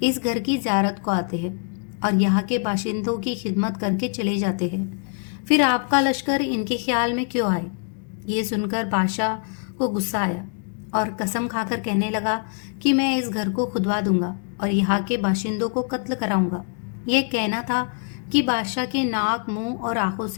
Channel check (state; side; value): quieter; right; 39.5 dB